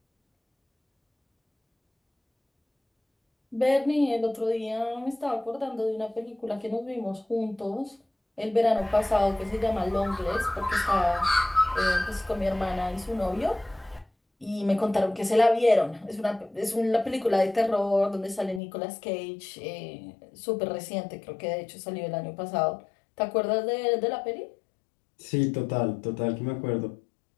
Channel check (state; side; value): drops out; right; at 18.6 s